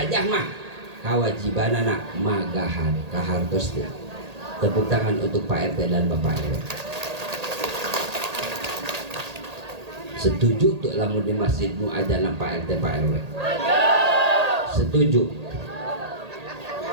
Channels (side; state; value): left; late; 1.8 ms